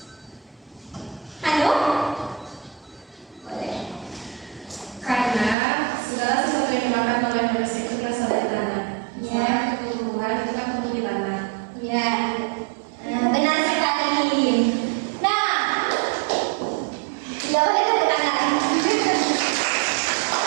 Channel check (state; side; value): drops out; left; at 5.6 s